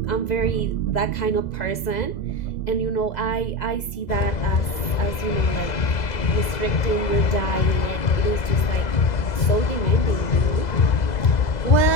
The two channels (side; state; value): right; late; 2.0 ms